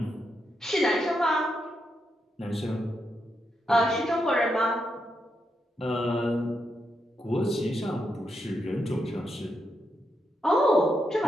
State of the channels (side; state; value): both; normal; correlation 0.83